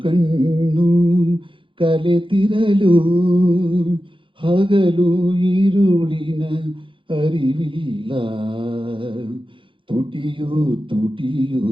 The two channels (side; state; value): left; late; 0.25 ms